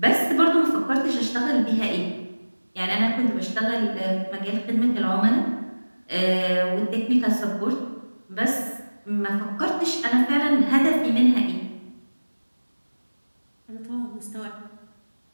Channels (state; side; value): inverted; both; correlation -1.00